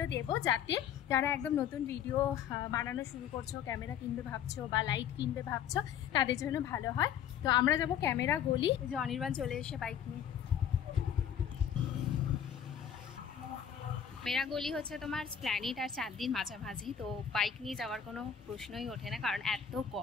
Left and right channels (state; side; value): quieter; right; 8.8 dB